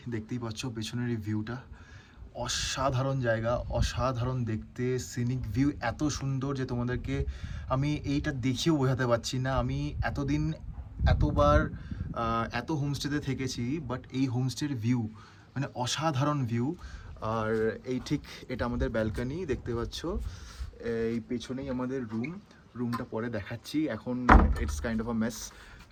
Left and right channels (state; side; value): identical; both; correlation 1.00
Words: দেখতেই পাচ্ছ পেছনের এই ভিউটা, অসাধারণ জায়গা, অসাধারণ দেখতে। সিনিক ভিউ এত সুন্দর যে তোমাদেরকে আমি এইটা দেখিয়েও বোঝাতে পারছি না। আমি এতদিন এতবার এত হোমস্টেতে থেকেছি, বাট এই হোমস্টের ভিউ মানে অসাধারণ ভিউ। আর এই ঠিক এটা আমাদের ব্যালকনি, দেখতে পাচ্ছ। এই পেছনেই আমাদের রুমটা পরে দেখাচ্ছি, এখন it's kind of a mace.